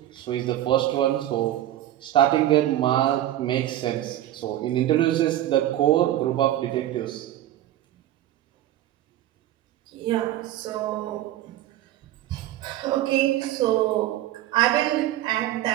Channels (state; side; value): quieter; left; 13.4 dB